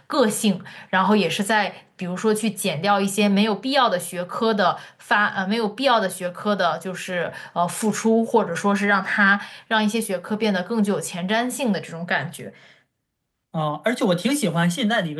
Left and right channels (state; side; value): identical; both; correlation 1.00